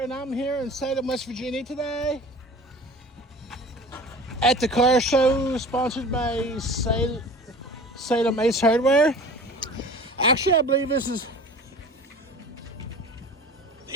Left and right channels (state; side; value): normal; both; correlation 0.40